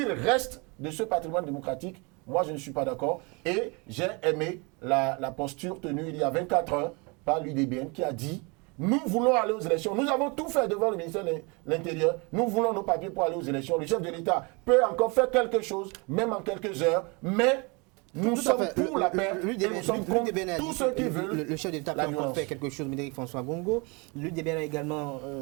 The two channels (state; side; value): quieter; left; 29.8 dB